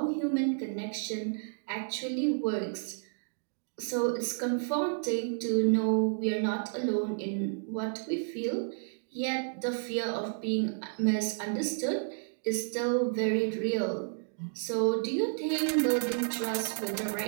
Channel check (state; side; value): silent; left; digital silence